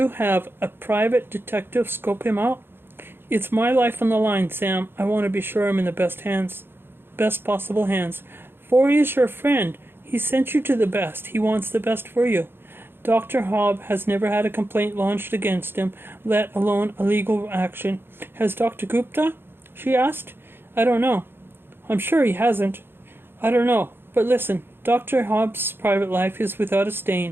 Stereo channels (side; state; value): left; late; 0.10 ms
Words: have a private detective scope him out? It's my life on the line, Sam. I want to be sure I'm in the best possible hands. Forey is your friend. He sent you to the best. He wants the best for you. Dr. Hobb has never had a complaint launched against him, let alone a legal action. Has Dr. Gupta? She asked. I don't know. I'm sure he hasn't. I don't know. But listen, Dr. Hobbs' private life is without a